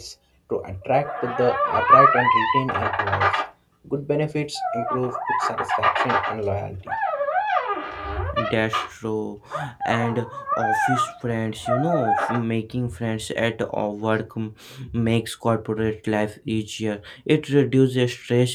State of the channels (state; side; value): identical; both; correlation 1.00